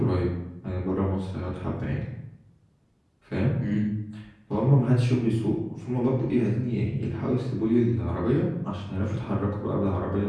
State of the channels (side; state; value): both; identical; correlation 1.00